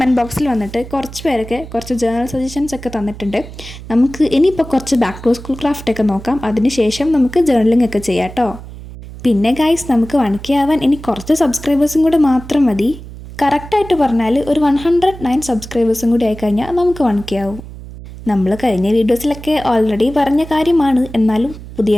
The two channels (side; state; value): right; noise; hum, 14 dB below the sound